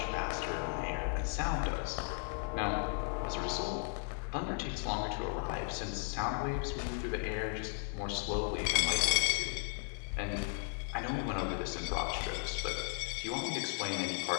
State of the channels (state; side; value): silent; right; 54 dB below the other